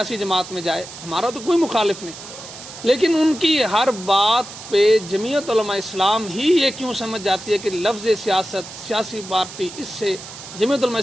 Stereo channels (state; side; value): noise; right; hiss, 14 dB below the sound